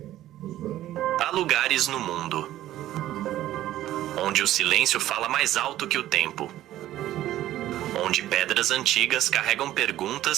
Os running... Há lugares no mundo onde o silêncio fala mais alto que o tempo, onde pedras antigas carregam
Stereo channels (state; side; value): quieter; left; 13.8 dB